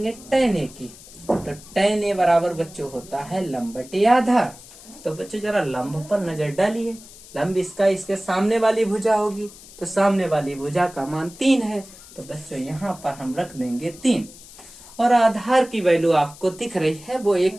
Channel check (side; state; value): left; noise; hiss, 19 dB below the sound